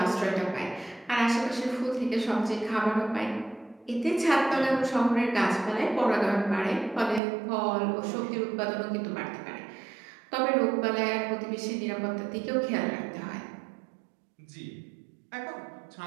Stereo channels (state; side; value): drops out; left; at 7.2 s